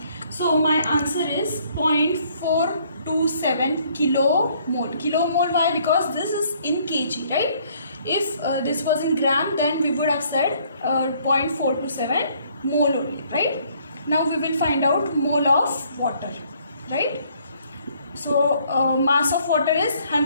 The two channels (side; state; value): both; inverted; correlation -0.64